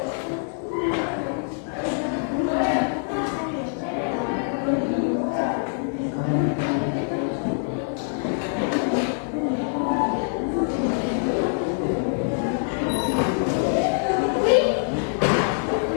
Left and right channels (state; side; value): silent; right; digital silence